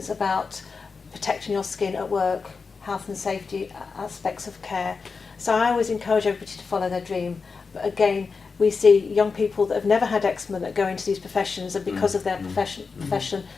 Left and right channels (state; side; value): quieter; right; 4.8 dB